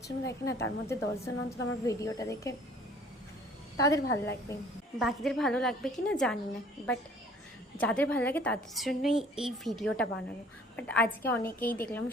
জন দেখে না, তার মধ্যে 10 জন অন্তত আমার ভিডিওটা দেখে তাদের ভালো লাগবে। বাকিদের ভালো লাগবে কি না জানি না, বাট যাদের ভালো লাগে তাদের জন্যই এই ভিডিওটা বানানো। বাট আজকে অনেকেই দেখলাম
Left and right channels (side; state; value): both; normal; correlation 0.54